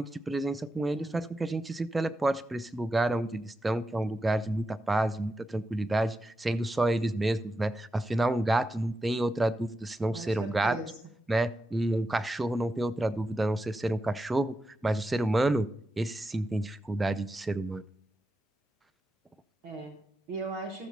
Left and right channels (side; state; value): both; normal; correlation 0.89